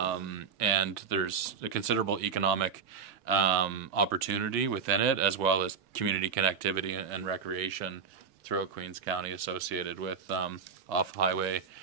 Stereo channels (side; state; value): left; quieter; 6.1 dB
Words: there's a considerable economic opportunity within it, as well as community connectivity and recreation throughout Queens County associated with off-highway